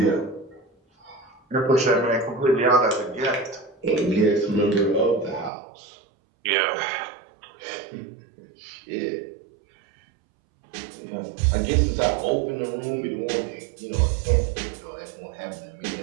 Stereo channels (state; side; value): drops out; left; at 5.5 s